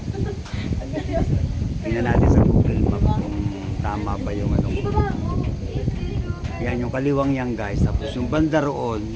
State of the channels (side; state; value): both; identical; correlation 1.00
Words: Tingnan natin sa Google Map kung tama ba yung ano. Yan yung kaliwang yan guys. Tapos yung banda roon,